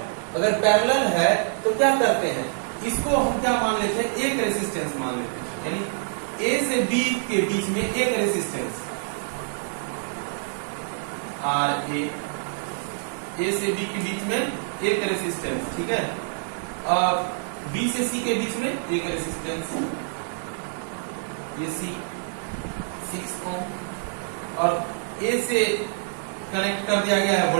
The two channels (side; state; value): left; silent; digital silence